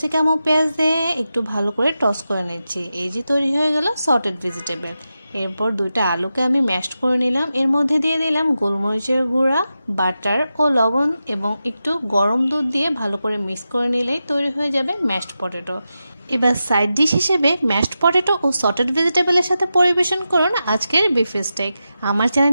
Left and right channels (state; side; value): inverted; both; correlation -0.91